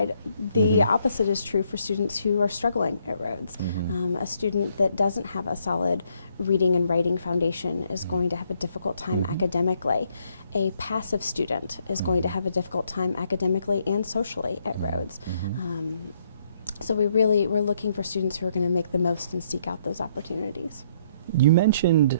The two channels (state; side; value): inverted; both; correlation -0.70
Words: the opposite is true for students who are struggling at Rhodes. A student that doesn't have a solid reading and writing foundation is going to have a difficult time academically. A passive student is going to have a difficult time academically and socially at Rhodes. So we're looking for students who are going to make the most and seek out those opportunities. You mentioned